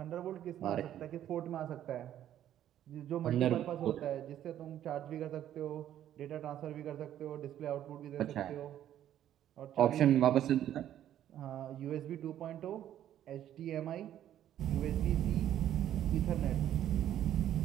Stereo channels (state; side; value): quieter; left; 11.4 dB